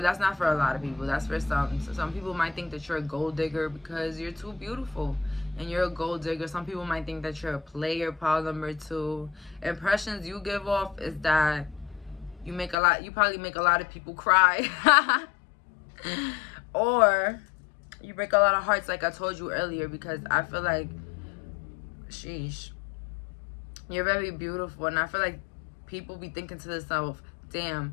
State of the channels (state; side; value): drops out; right; at 12.8 s